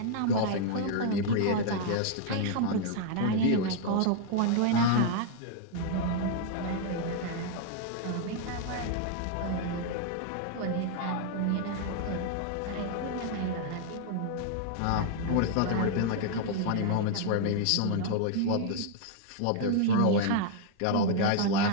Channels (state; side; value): different; both; correlation 0.00